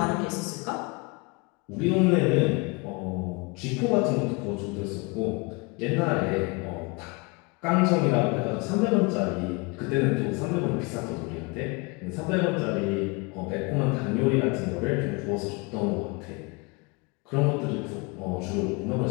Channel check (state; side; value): quieter; right; 28.4 dB